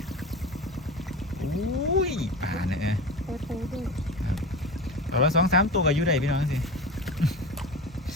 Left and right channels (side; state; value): both; normal; correlation 0.29